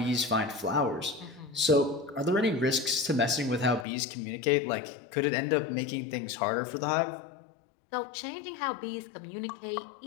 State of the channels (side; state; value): right; drops out; at 3.9 s